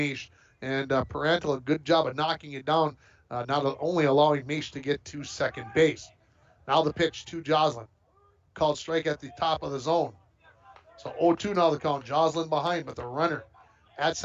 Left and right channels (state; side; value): identical; both; correlation 1.00